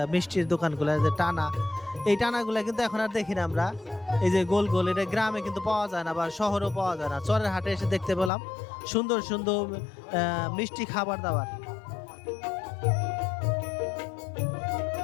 মিষ্টির দোকানগুলো, যে টানা, এই টানাগুলা কিন্তু এখন আর দেখি না আমরা। এই যে গোল গোল, এটা গ্রামে কিন্তু পাওয়া যায় না, বা শহরেও পাওয়া যায় না। চরের হাটে এসে দেখতে পেলাম সুন্দর সুন্দর মিষ্টি খাবার দাবার।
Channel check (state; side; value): drops out; right; at 8.3 s